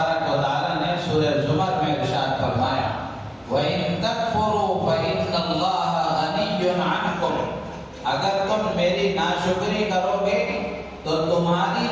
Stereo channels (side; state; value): both; identical; correlation 1.00